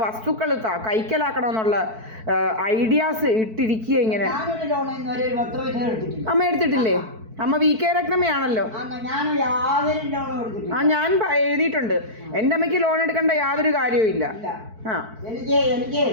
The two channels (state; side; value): late; left; 4.5 ms